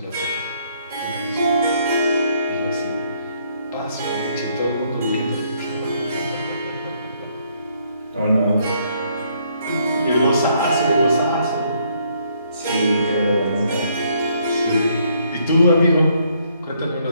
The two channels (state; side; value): inverted; both; correlation -0.69